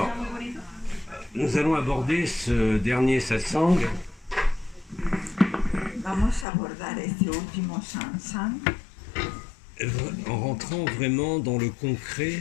nous allons aborder ce dernier satsang Vamos a abordar este último satsang en rentrant vraiment dans le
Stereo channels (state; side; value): drops out; right; at 6.5 s